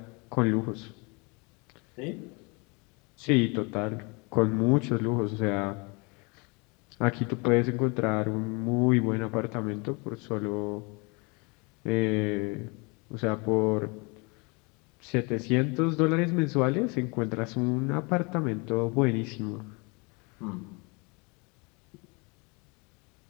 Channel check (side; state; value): right; quieter; 29.9 dB